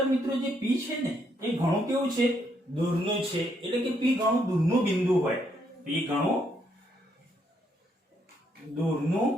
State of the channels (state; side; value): normal; both; correlation 0.74